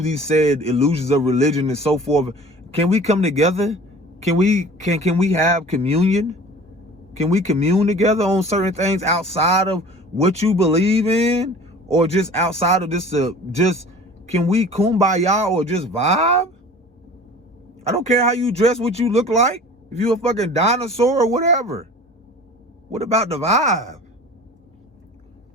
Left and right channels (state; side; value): normal; both; correlation 0.44